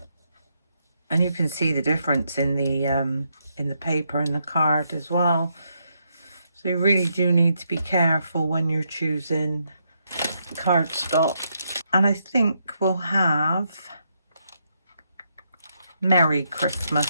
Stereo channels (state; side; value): inverted; both; correlation -0.78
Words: and you can see the difference in the paper and the card as well. So you really do need to be careful when you're choosing cardstock. And I think we'll have Merry Christmas